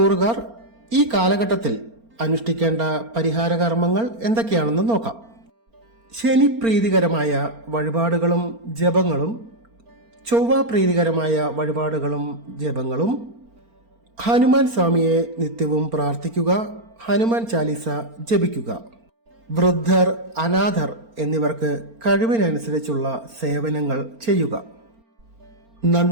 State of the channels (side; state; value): left; late; 4.4 ms